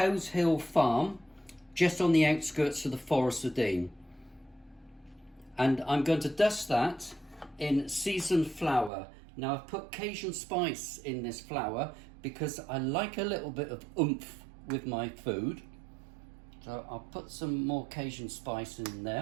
Hill Farm, just on the outskirts of the Forest of Dean. And I'm going to dust that in seasoned flour. Now I've put Cajun spice in this flour because I like a little bit of oomph with my food. So I'll put some more Cajun spice in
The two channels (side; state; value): left; drops out; at 8.9 s